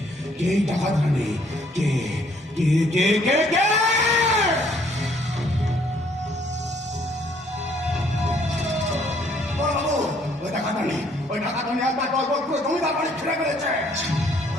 কে এই ডাকাত রানী, কে কে কে কে কে? ওই ডাকাত রানী একবার দলবল পুরো জমিদার বাড়ি ছেড়ে ফেলেছে।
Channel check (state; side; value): normal; both; correlation 0.64